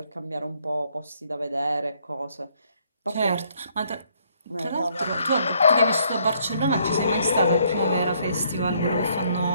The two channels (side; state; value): both; inverted; correlation -0.68